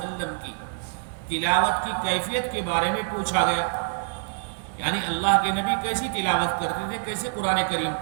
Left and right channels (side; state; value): left; silent; digital silence